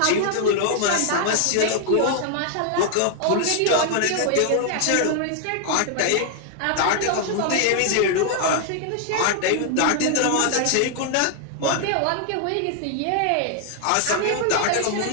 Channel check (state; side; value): different; both; correlation 0.00